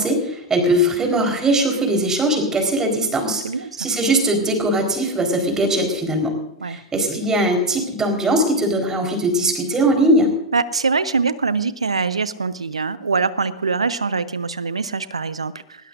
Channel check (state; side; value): normal; both; correlation 0.03